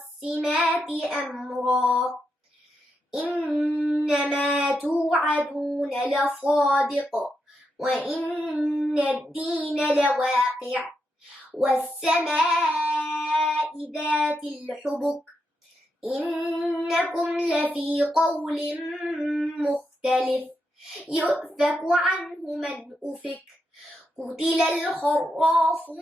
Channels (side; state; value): both; normal; correlation 0.84